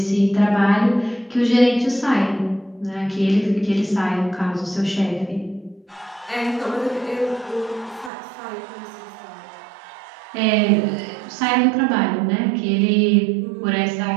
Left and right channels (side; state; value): left; drops out; at 8.1 s